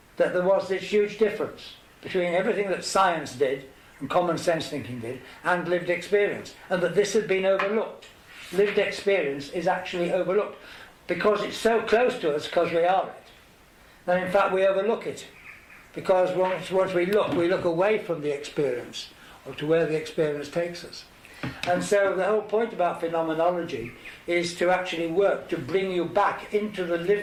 that there was this huge difference between everything that science did and common sense thinking did and lived experience, and that this had been overlooked. Lived experience is actually overlooked because it's so close to us because we are it. And in fact we overlook it because once we look away from the experience or to where the experience takes us. And so the whole point about phenomenology is to actually work to bring you back into the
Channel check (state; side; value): identical; both; correlation 1.00